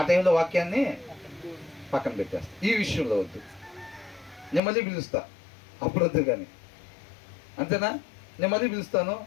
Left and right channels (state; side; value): drops out; right; at 4.6 s